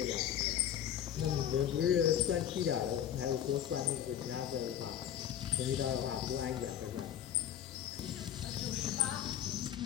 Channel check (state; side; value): quieter; right; 10.3 dB